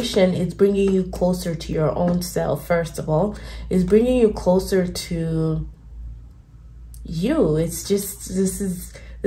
is bringing you closer to your own self. First of all, is bringing you closer to you. It's just, this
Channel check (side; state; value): both; identical; correlation 1.00